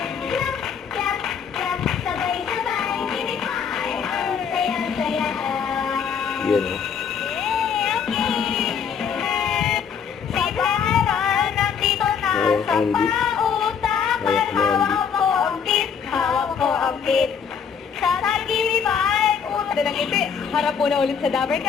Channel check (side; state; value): right; quieter; 6.9 dB